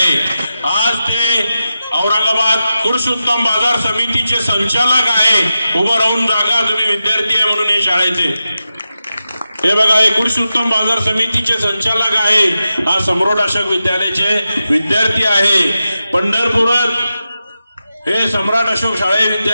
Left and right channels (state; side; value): inverted; both; correlation -0.91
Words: आज ते औरंगाबाद पुरुषोत्तम बाजार समितीचे संचालक आहे. उभं राहून जागा तुम्ही विद्यार्थी आहे म्हणून हे शाळेचे. हे बघा, हे पुरुषोत्तम बाजार समितीचे संचालक आहे. हा सम्राट अशोक विद्यालयाचे विद्यार्थी आहे. पंढरपुरात हे सम्राट अशोक शाळे